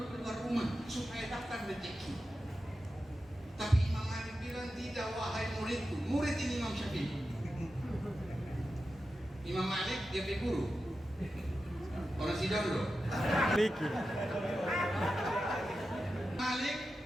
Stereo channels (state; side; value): normal; both; correlation 0.91